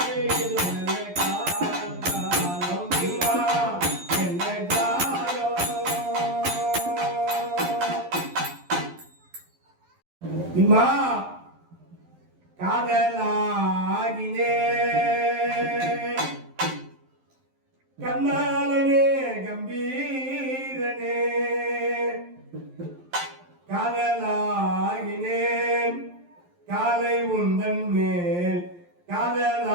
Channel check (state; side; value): late; left; 11 ms